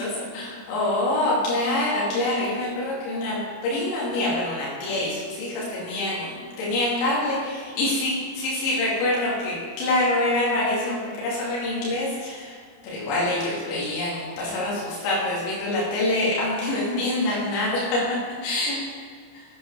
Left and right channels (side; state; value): right; late; 29 ms